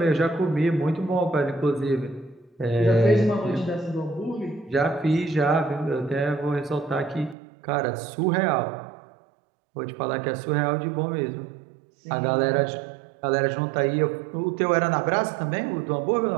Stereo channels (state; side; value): drops out; left; at 7.4 s